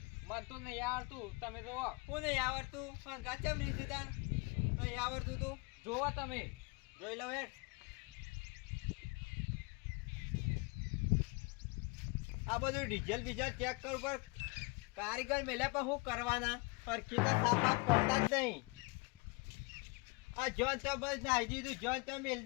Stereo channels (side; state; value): right; quieter; 28.3 dB